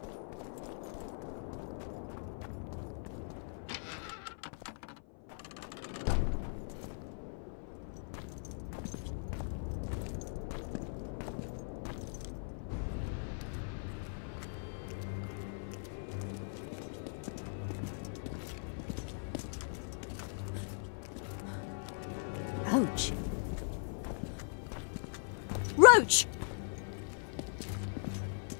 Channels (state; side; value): silent; right; 52 dB below the other